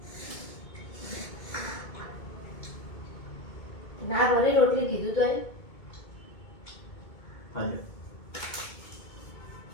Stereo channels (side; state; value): right; late; 2.2 ms